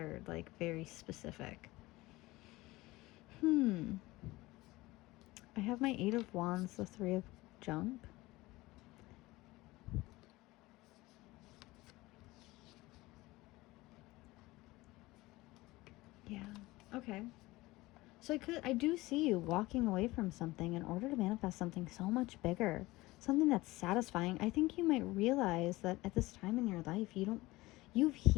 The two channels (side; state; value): right; quieter; 19.9 dB